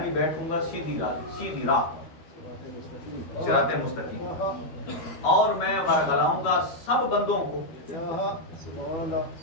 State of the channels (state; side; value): late; right; 12 ms